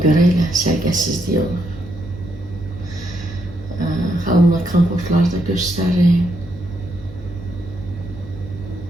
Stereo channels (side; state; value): both; normal; correlation 0.78